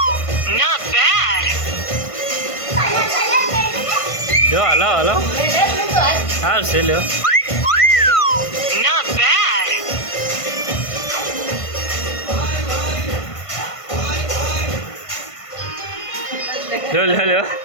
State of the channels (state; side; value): late; right; 1.5 ms